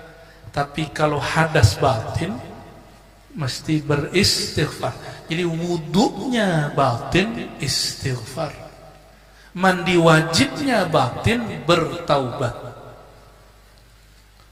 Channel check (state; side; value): identical; both; correlation 1.00